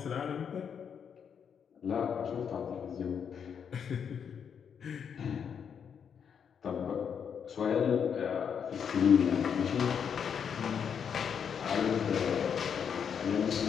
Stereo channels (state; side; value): quieter; right; 7.4 dB